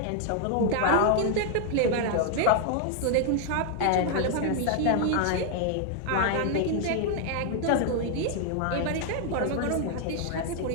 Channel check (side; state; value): both; different; correlation 0.00